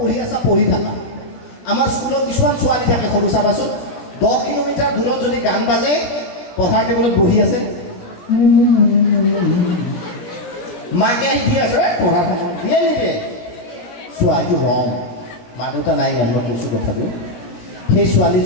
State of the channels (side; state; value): right; late; 17 ms